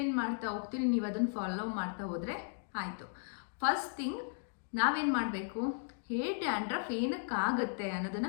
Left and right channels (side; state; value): right; silent; digital silence